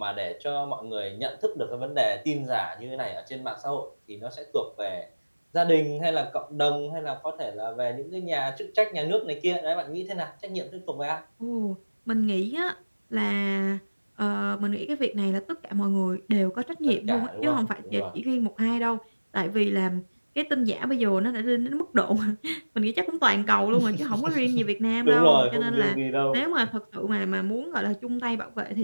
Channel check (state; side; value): inverted; both; correlation -1.00